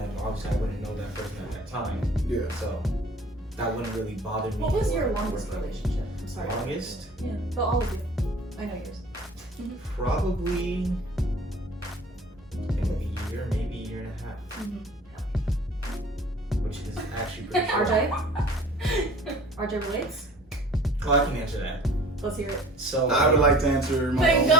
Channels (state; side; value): normal; both; correlation 0.47